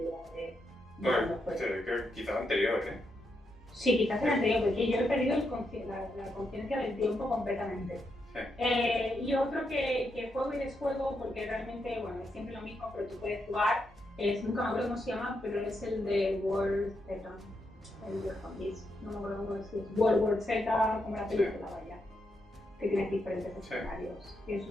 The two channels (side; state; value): both; normal; correlation 0.82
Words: de Bueno, cuándo fue. creo que quizás anterior, ¿eh? Sí, quizás el anterior, porque yo he perdido la conciencia del tiempo completamente. Sí. Y otro que juego y desjuego, porque realmente, bueno, es siempre lo mismo, pero tú puedes jugar, nunca me acuerdo cómo se llama, pero es el de World Z, el de Zombies, no me acuerdo cómo decir, World War Z, como la película, vaya, que tienes diferentes escenarios. Y